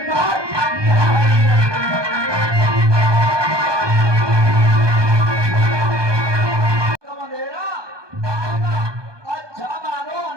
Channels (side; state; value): left; late; 1.2 ms